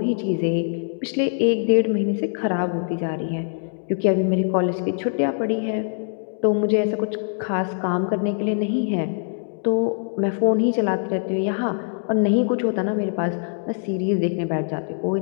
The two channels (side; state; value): right; silent; digital silence